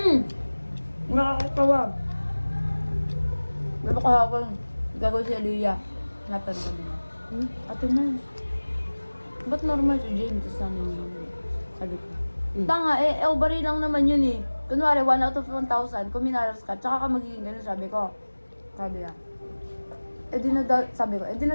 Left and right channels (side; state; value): both; inverted; correlation -1.00